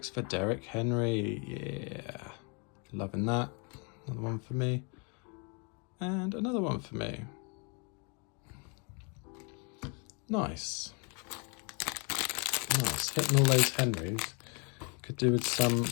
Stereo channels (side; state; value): right; quieter; 34.7 dB